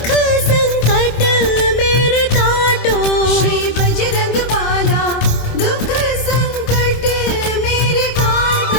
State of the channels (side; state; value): right; late; 26 ms